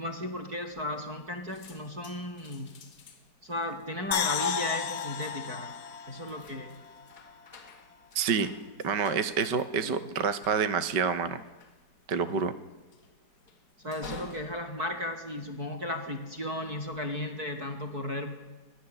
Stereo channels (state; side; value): late; left; 5.1 ms